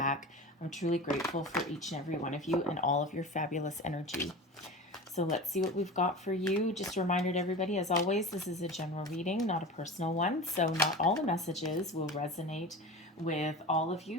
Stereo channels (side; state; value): both; normal; correlation 0.31